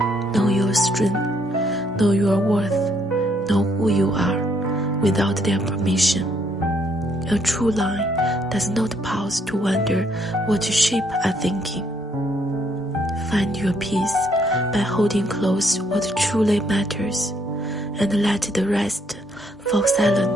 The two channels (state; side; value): normal; both; correlation 0.70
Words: Know your strength, know your worth, know who you are without their permission. A true line does not pause to wonder what sheep are thinking. Find your peace by holding close what truly matters, and let the rest fall